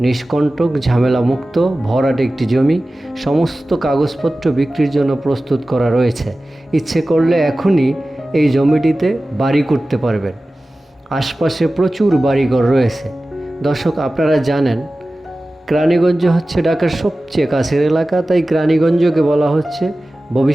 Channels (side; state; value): both; normal; correlation 0.96